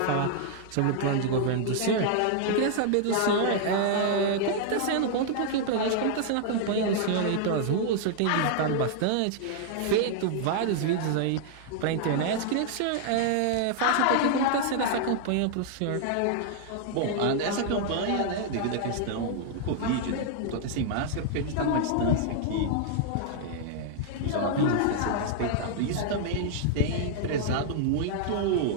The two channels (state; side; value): different; both; correlation -0.01